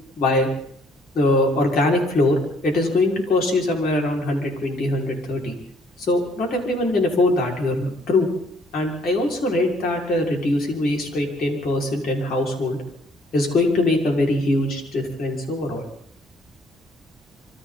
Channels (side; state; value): both; normal; correlation 0.63